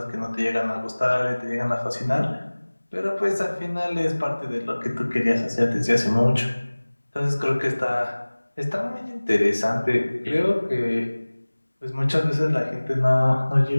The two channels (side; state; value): both; inverted; correlation -1.00